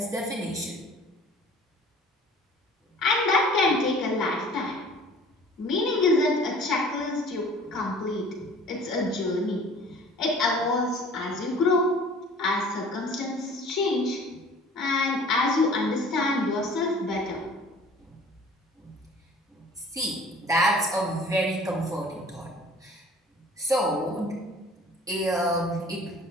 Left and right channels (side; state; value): both; normal; correlation 0.48